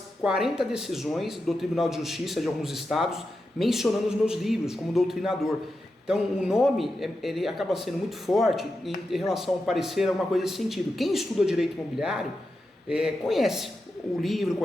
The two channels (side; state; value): both; normal; correlation 0.89